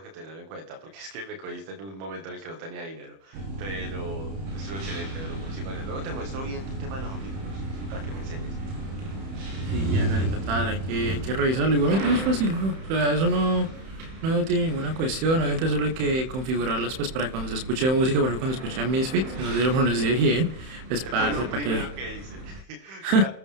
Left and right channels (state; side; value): late; left; 31 ms